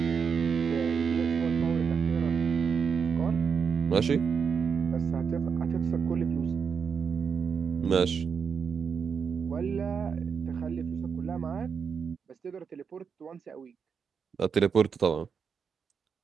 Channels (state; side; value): quieter; left; 6.3 dB